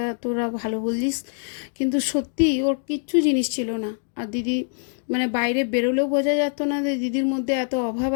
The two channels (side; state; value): right; silent; 59 dB below the other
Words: তোরা ভালো বললিস। কিন্তু সত্যি ওর কিচ্ছু জিনিস ছিল না। আর দিদি মানে বাইরে বেরোলেও বোঝা যেত না যে দিদির মধ্যে এত অভাব